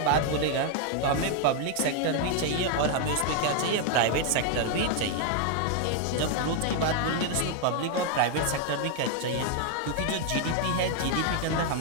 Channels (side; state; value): both; different; correlation 0.00